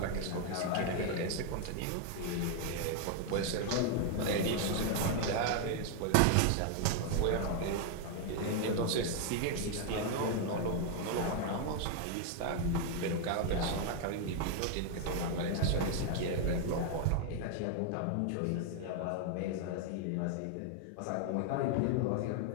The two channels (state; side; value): different; both; correlation 0.00